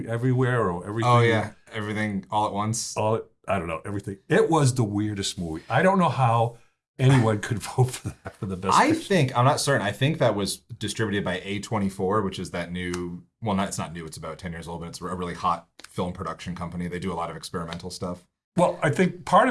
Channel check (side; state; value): both; identical; correlation 1.00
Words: or Everything. Oh, yeah. Everything All at Once. I don't know, everything. It was the weirdest movie. I don't know how anyone could vote for that for the best picture. I'm not certain. I think that was distributed by A24, which is that new, well, it's not new, it's about 10 years old, but it's a really hot film production company. They do a lot of experimental stuff. Well, I think part